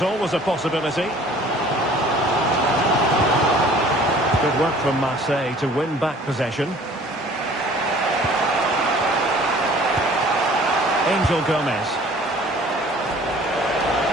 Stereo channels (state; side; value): normal; both; correlation 0.51